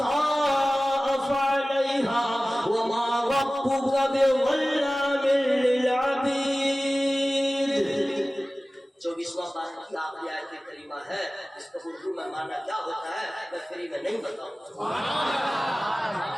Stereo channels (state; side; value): normal; both; correlation 0.97